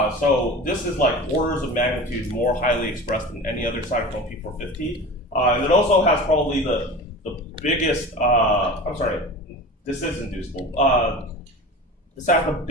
So this is like orders of magnitude more highly expressed than any other cytochrome P450. And it also has probably the biggest, this is inducible. This has the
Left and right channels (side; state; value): both; normal; correlation 0.34